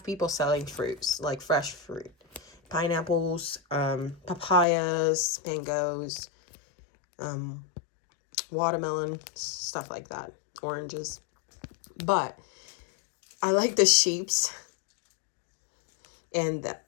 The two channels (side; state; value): right; drops out; at 4.7 s